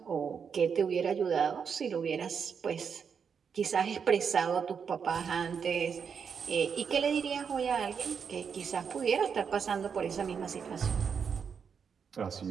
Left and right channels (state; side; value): quieter; left; 6.6 dB